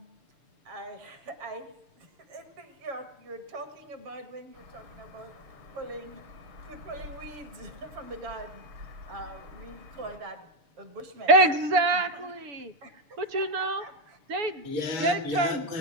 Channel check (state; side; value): late; left; 6.8 ms